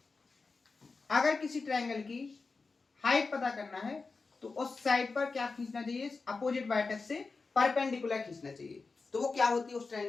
अगर किसी ट्रायंगल की हाइट पता करना है तो उस साइड पर क्या खींचना चाहिए? अपोजिट वर्टेक्स से परपेंडिकुलर खींचना चाहिए। तो वो क्या होती है उस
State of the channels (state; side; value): quieter; right; 4.2 dB